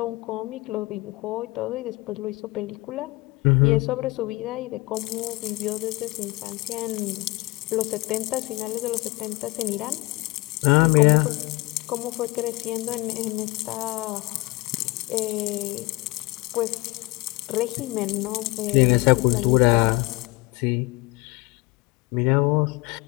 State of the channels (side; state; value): right; quieter; 22.5 dB